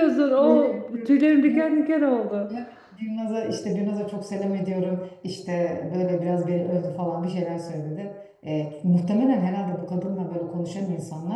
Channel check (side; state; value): both; identical; correlation 1.00